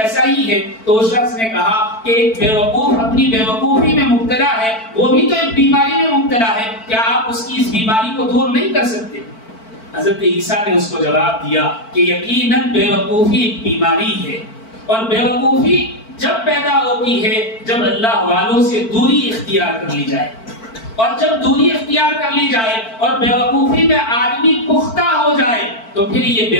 ہی ہے۔ تو اس شخص نے کہا کہ ایک بے وقوف اپنی بے وقوفی میں مبتلا ہے، وہ بھی تو ایک بیماری میں مبتلا ہے، کیا آپ اس کی اس بیماری کو دور نہیں کر سکتے؟ حضرت عیسیٰ نے اس کو جواب دیا کہ یقیناً بے وقوفی ایک بیماری ہے، اور بے وقوفی جب پیدا ہوتی ہے جب اللہ والوں سے دوری اختیار کر لی جائے، اور جب دوری اختیار کر لی جائے اور بے وقوفی میں آدمی پختہ ہو جائے تو پھر یہ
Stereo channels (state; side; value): late; right; 4.5 ms